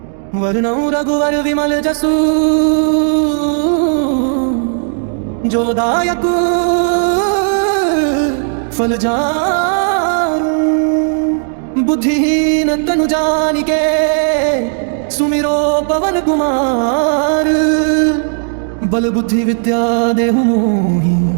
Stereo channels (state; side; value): silent; left; digital silence